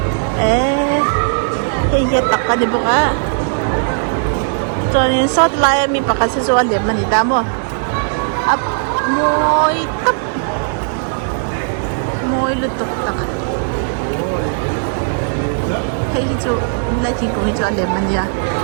Kaya tak ka di buka. So, yung sot laya mi pa kasi so alim manita mo. Up, moy tap. Moy lutok tak. thấy chỗ lại thì cũng chỗ đẹp mình nha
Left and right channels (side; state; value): left; silent; digital silence